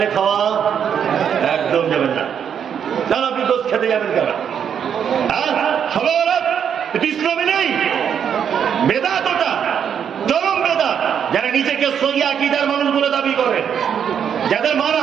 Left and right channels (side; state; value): left; quieter; 8.1 dB